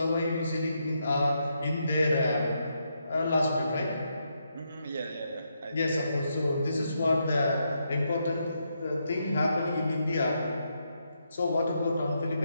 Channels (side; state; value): both; inverted; correlation -0.80